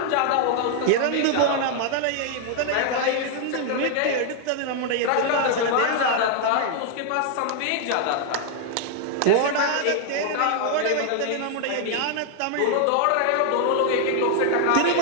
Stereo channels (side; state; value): both; different; correlation 0.00